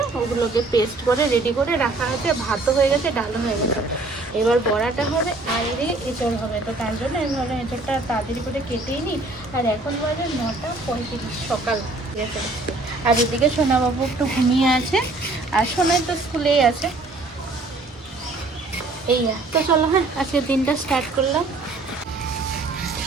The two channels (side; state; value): left; quieter; 3.2 dB